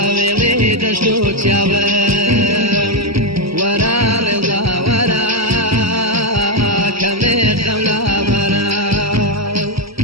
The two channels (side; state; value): left; late; 0.76 ms